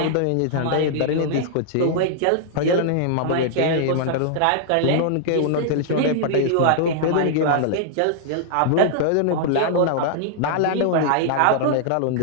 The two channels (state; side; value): different; both; correlation -0.01